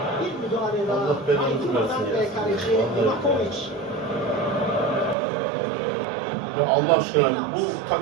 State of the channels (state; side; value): drops out; left; at 5.2 s